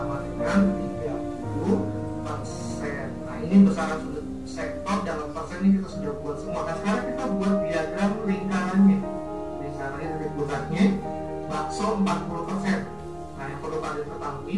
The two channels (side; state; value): both; identical; correlation 1.00